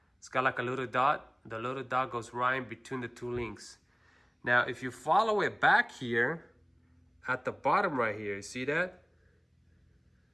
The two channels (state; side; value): identical; both; correlation 1.00